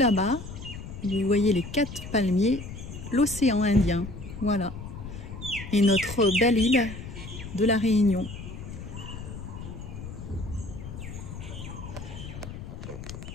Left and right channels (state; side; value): noise; left; rumble, 10 dB below the sound